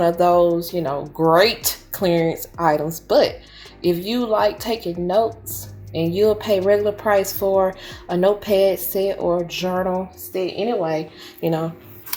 of those, great clearance items. But if you like taking notes and you'll pay regular price for a notepad set or journal set anyway,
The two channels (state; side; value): identical; both; correlation 1.00